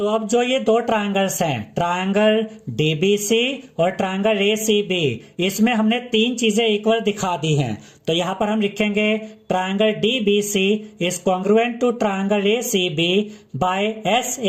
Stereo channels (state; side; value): identical; both; correlation 1.00